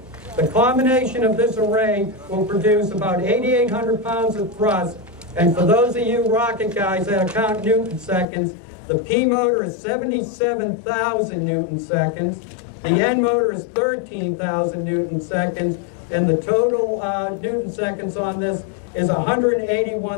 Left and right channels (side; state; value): right; drops out; at 8.2 s